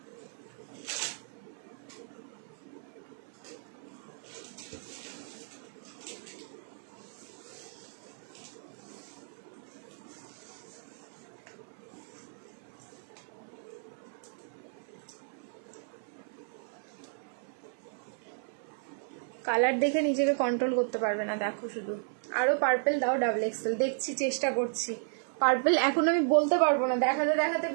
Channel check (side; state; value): left; silent; 55 dB below the other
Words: কালার দেখে নিজেকে কন্ট্রোল করতে পারবে না, দেখো শুধু। আরো পার্পল দাও ডাবল এক্সেল, দেখছি, চেষ্টা করছি। পার্পল এখন আমি বলতে পারবো না, দেখাতে দেখাতে